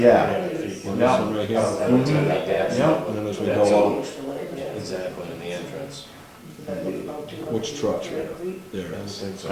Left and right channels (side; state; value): both; identical; correlation 1.00